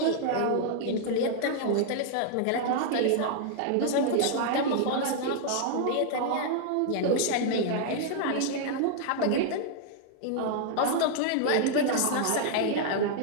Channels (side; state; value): both; different; correlation -0.01